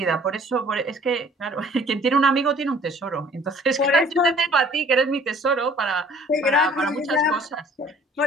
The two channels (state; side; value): normal; both; correlation 0.53